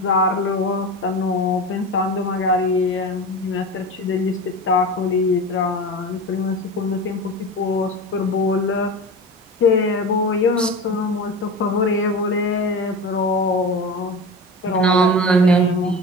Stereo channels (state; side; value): normal; both; correlation 0.29